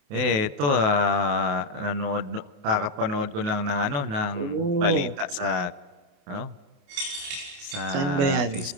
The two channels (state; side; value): late; left; 28 ms